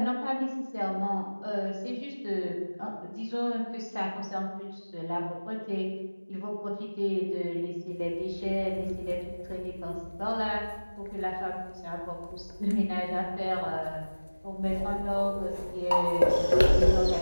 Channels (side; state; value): both; inverted; correlation -1.00